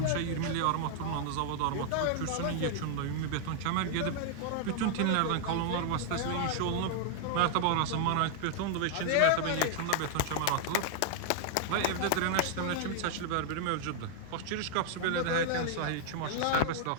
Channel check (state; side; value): different; both; correlation 0.00